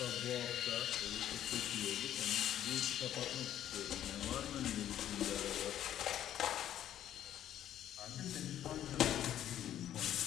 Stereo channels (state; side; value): quieter; right; 11.3 dB